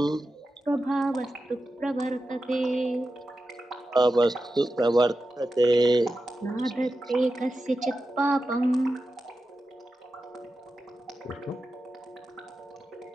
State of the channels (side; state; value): both; normal; correlation 0.91